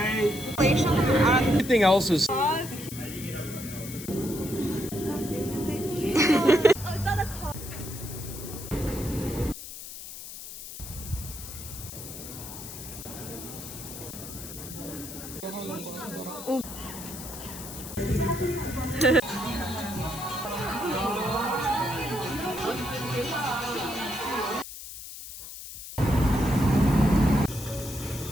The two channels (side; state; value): left; noise; hiss, 11 dB below the sound